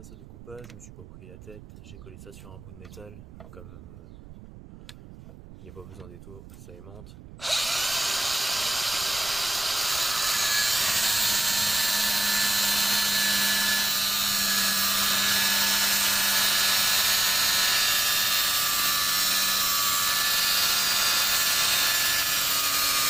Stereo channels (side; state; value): right; noise; rumble, 18 dB below the sound